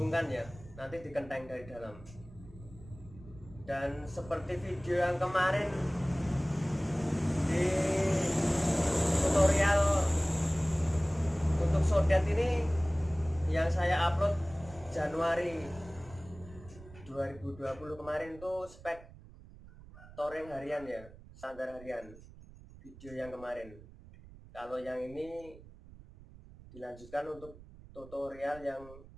ya, nanti dikenteng dari dalam. Dan seperti video yang kemarin di tutorial untuk sodet ini yang saya upload Januari 2020 kemarin, tuh spek touring harian ya, standar harian, video yang kemarin. Kalau yang ini dilanjutkan untuk tutorial yang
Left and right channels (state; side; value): noise; right; rumble, 19 dB below the sound